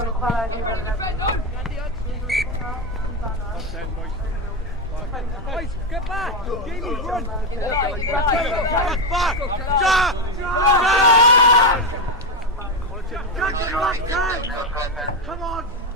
Get back! Jamie, run! Back! Jack! Come on!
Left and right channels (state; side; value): normal; both; correlation 0.09